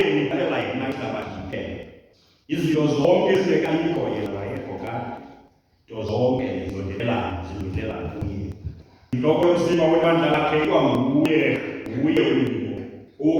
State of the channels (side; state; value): both; identical; correlation 1.00